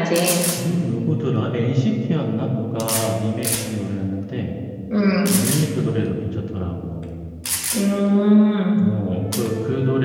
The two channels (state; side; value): identical; both; correlation 1.00